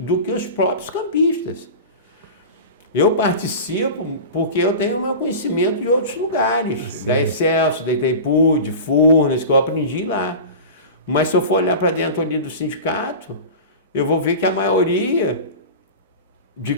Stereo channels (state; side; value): inverted; both; correlation -0.31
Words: que os próprios campistas. Eu participo porque eu tenho o meu conhecimento de outros lugares, sim, da Excelsior, da Itaipu, de Furnas, que eu aprendi lá. Mas se eu for olhar para dentro ali do sindicato, eu vou ver que a maioria de